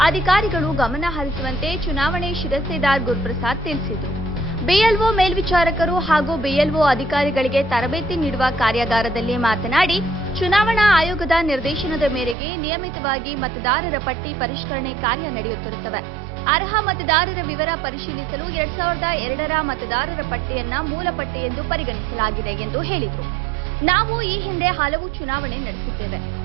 ಅಧಿಕಾರಿಗಳು ಗಮನ ಹರಿಸುವಂತೆ ಚುನಾವಣೆ ಶಿರಸ್ತೇದಾರ್ ಗುರುಪ್ರಸಾದ್ ತಿಳಿಸಿದರು. ಬಿಎಲ್ಒ ಮೇಲ್ವಿಚಾರಕರು ಹಾಗೂ ಬಿಎಲ್ಒ ಅಧಿಕಾರಿಗಳಿಗೆ ತರಬೇತಿ ನೀಡುವ ಕಾರ್ಯಾಗಾರದಲ್ಲಿ ಮಾತನಾಡಿ, ಚುನಾವಣಾ ಆಯೋಗದ ನಿರ್ದೇಶನದ ಮೇರೆಗೆ ನಿಯಮಿತವಾಗಿ ಮತದಾರರ ಪಟ್ಟಿ ಪರಿಷ್ಕರಣೆ ಕಾರ್ಯ ನಡೆಯುತ್ತಿರುತ್ತವೆ. ಅರ್ಹ ಮತದಾರರ ವಿವರ ಪರಿಶೀಲಿಸಲು 2002ರ ಮತದಾರರ ಪಟ್ಟಿಯನ್ನ ಮೂಲ ಪಟ್ಟಿ ಎಂದು ಪರಿಗಣಿಸಲಾಗಿದೆ ಎಂದು ಹೇಳಿದರು. ನಾವು ಈ ಹಿಂದೆ ಹಲವು ಚುನಾವಣೆ ನಡೆಸಿದ್ದೇವೆ,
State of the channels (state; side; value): drops out; left; at 12.4 s